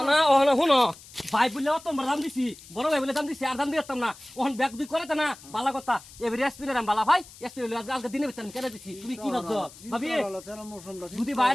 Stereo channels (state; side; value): noise; left; hiss, 20 dB below the sound